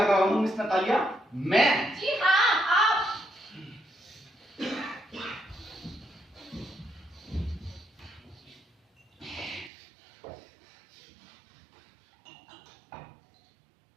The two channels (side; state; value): left; drops out; at 9.7 s